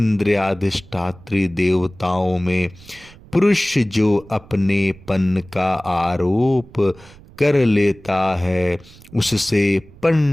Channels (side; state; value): right; noise; rumble, 22 dB below the sound